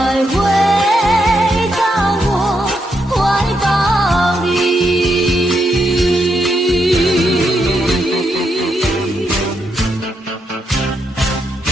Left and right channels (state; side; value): normal; both; correlation 0.80